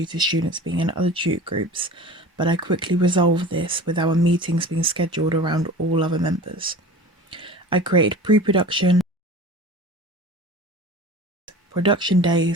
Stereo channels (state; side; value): normal; both; correlation 0.39